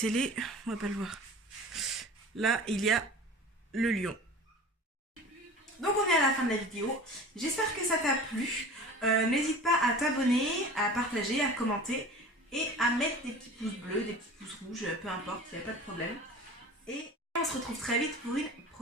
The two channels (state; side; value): normal; both; correlation 0.39